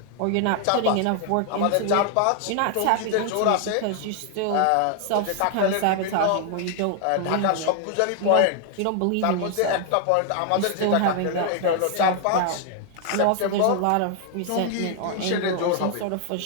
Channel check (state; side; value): different; both; correlation 0.00